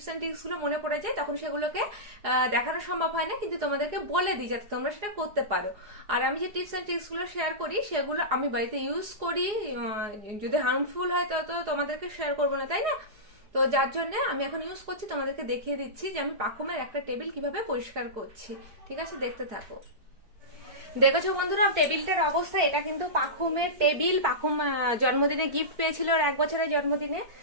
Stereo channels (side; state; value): left; late; 4.8 ms